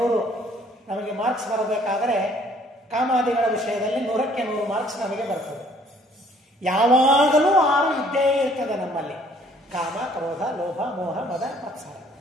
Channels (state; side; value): normal; both; correlation 0.60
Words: ನಮಗೆ ಮಾರ್ಕ್ಸ್ ಬರಬೇಕಾದರೆ ಕಾಮಾದಿಗಳ ವಿಷಯದಲ್ಲಿ 100ಕ್ಕೆ 100 ಮಾರ್ಕ್ಸ್ ನಮಗೆ ಬರ್ತದೆ. ಯಾವಾಗಲೂ 6 ಇದ್ದೇ ಇರ್ತದೆ ನಮ್ಮಲ್ಲಿ. ಕಾಮ, ಕ್ರೋಧ, ಲೋಭ, ಮೋಹ, ಮದ, ಮತ್ಸರ,